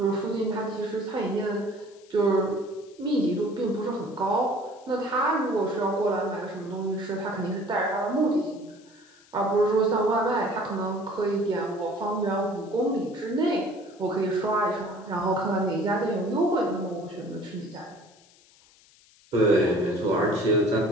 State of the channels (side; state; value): left; noise; hiss, 28 dB below the sound